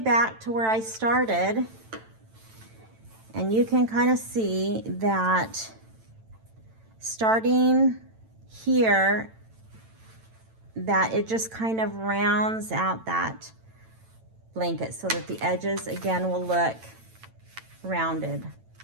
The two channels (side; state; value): left; late; 9.0 ms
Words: to where I started, and you can kind of see that starting here, that it just kind of rounds out that blanket so that the edges again will look rounded